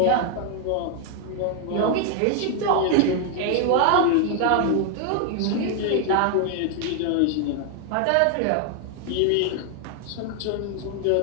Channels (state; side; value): different; both; correlation 0.00